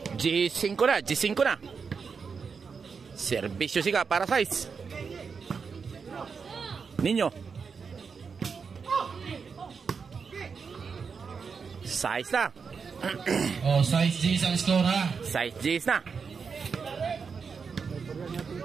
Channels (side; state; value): left; quieter; 5.6 dB